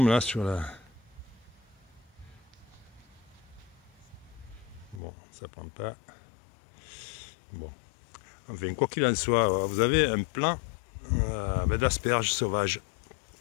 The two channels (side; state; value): right; drops out; at 5.0 s